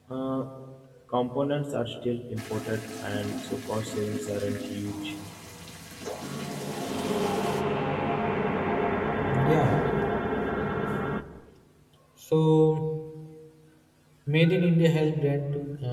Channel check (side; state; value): both; identical; correlation 1.00